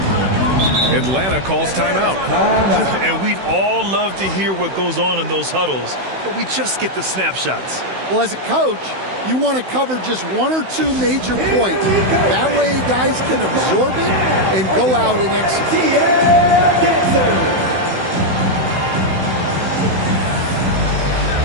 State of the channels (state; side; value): late; left; 16 ms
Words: Atlanta calls timeout. And we'd all love to hear what goes on in those huddles, but we just get the snapshots. Well, as a coach, you want to cover just 1 or 2 major points. That way guys can absorb it and go out and execute.